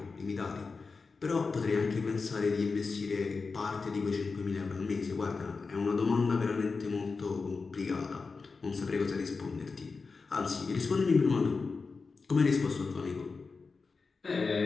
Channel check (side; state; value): right; quieter; 4.5 dB